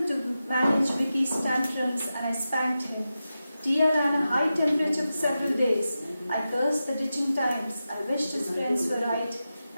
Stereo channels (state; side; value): inverted; both; correlation -0.92